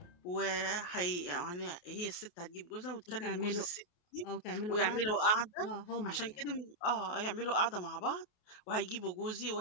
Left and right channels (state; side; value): late; right; 28 ms